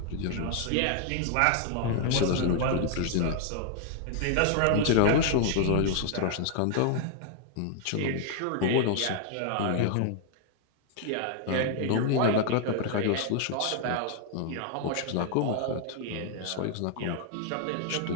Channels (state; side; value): different; both; correlation 0.00